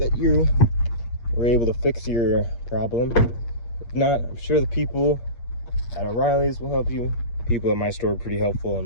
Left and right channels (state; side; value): late; right; 8.5 ms